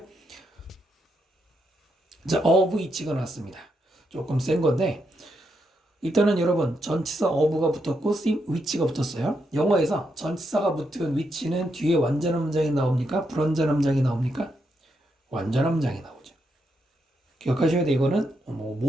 자, of each가 나왔습니다. 조금 센 건데 일단은 여러분 전치사 of가 붙었고 which가 붙었어요. 영어에서 전치사가 붙은 which는 뒤에 완전한 문장이 나옵니까? 불완전한 문장이 나옵니까? 완전한 문장이 나오죠. 기억하셔야 돼. 이거는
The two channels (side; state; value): both; normal; correlation 0.81